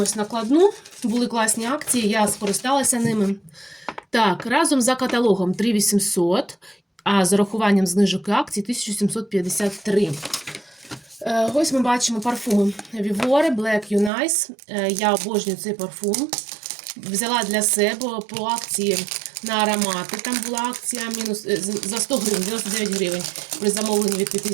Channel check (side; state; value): left; drops out; at 14.1 s